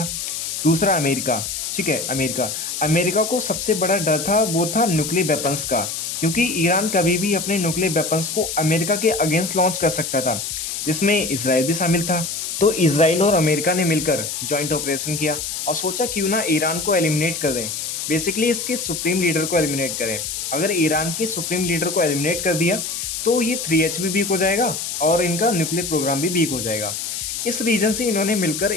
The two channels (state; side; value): noise; left; hiss, 4 dB below the sound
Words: दूसरा अमेरिका, ठीक है, अमेरिका अमेरिका को सबसे बड़ा डर था, वो था न्यूक्लियर वेपन्स का, क्योंकि ईरान कभी भी अपने न्यूक्लियर वेपन्स को अमेरिका के अगेंस्ट लॉन्च कर सकता था, जिसमें इसराइल भी शामिल था। तो इसराइल और अमेरिका ने मिलकर जॉइंट ऑपरेशन किया और सोचा क्यों ना ईरान को एलिमिनेट कर दें। बेसिकली इसके सुप्रीम लीडर को एलिमिनेट करें। अगर ईरान के सुप्रीम लीडर को एलिमिनेट कर दिया तो ये 3H भी वीक हो जाएगा और इनका न्यूक्लियर प्रोग्राम भी वीक हो जाएगा। इस रीजन से इन्होंने मिलकर